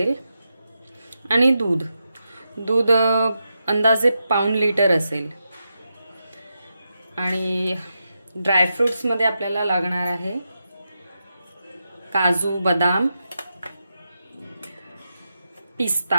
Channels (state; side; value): inverted; both; correlation -0.87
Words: आणि दूध अंदाजे पाऊण लिटर असेल। आणि ड्रायफ्रुट्स मध्ये आपल्याला लागणार आहे काजू, बदाम, पिस्ता,